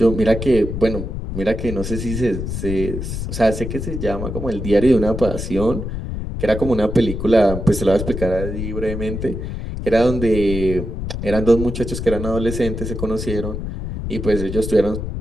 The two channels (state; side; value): noise; left; rumble, 5 dB below the sound